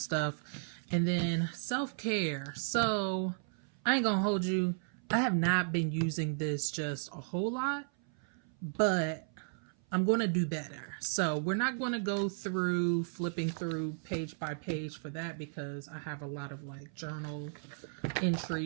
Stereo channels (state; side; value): silent; left; 55 dB below the other